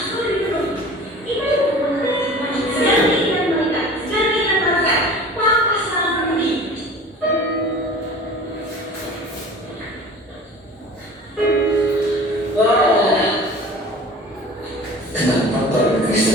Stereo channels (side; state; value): both; normal; correlation 0.41